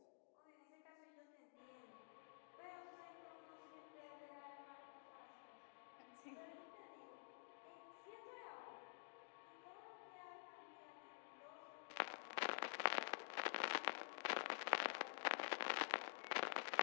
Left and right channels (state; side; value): silent; right; digital silence